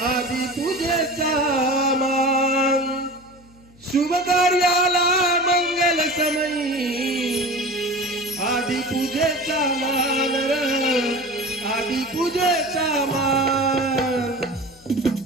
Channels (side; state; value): left; noise; hum, 27 dB below the sound